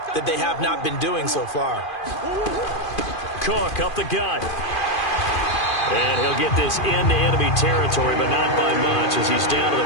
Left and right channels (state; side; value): late; right; 2.4 ms